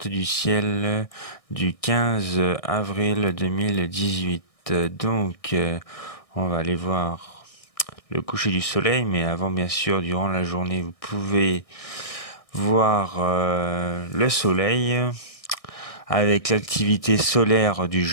du ciel du 15 avril 2018. Donc, on va aller voir le coucher du soleil, mais avant, bien sûr, durant la journée, vous pouvez voir le soleil avec l'activité solaire du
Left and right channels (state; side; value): late; right; 1.6 ms